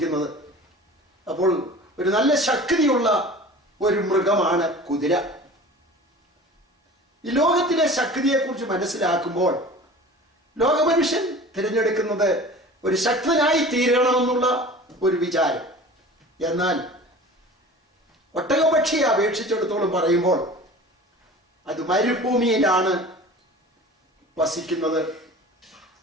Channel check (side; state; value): both; normal; correlation 0.40